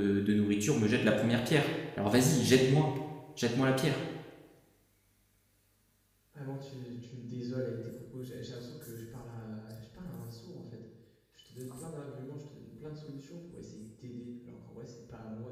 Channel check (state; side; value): identical; both; correlation 1.00